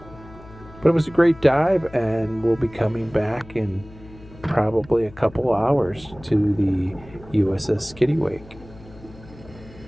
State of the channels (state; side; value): noise; left; hum, 20 dB below the sound